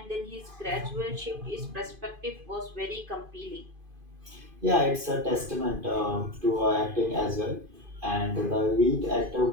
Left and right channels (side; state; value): left; late; 2.5 ms